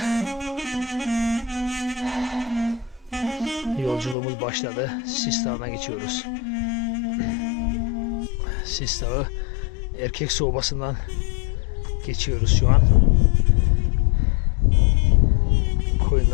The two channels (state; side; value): drops out; right; at 4.2 s